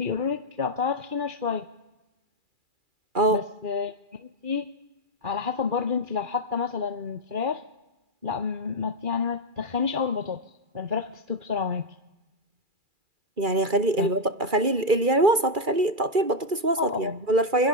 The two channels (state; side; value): late; left; 2.4 ms